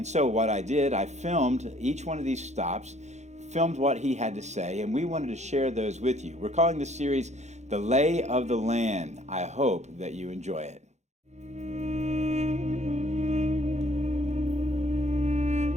so what I did, I filmed each one of these stops, filmed what he had to say, and we wanted to share those with you. We're calling this series The Lay of the Land. I hope that you enjoy it.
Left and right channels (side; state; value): left; late; 0.33 ms